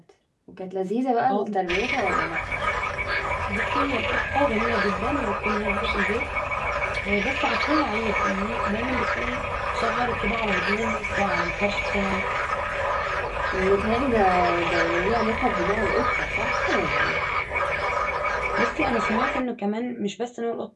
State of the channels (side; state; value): both; identical; correlation 1.00